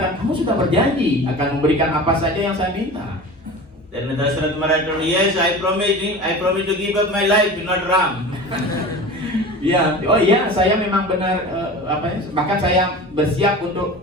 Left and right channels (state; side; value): normal; both; correlation 0.35